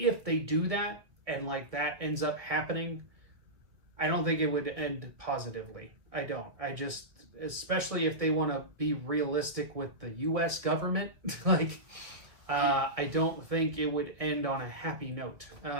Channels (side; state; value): left; late; 1.6 ms